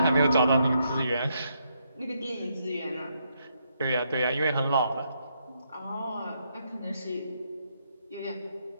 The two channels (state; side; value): inverted; both; correlation -0.77